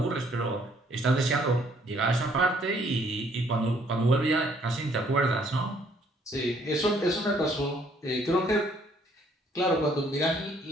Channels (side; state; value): both; normal; correlation 0.64